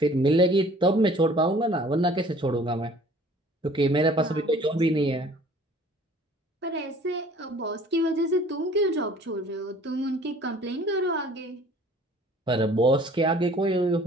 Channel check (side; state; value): both; normal; correlation 0.51